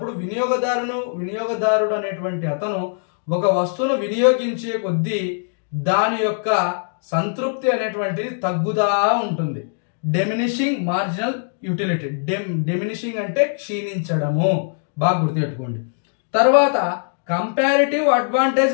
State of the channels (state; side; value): silent; right; digital silence